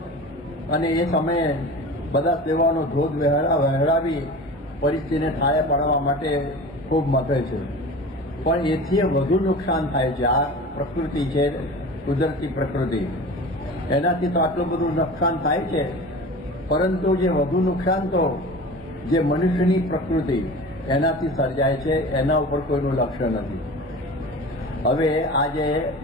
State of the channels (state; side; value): normal; both; correlation 0.36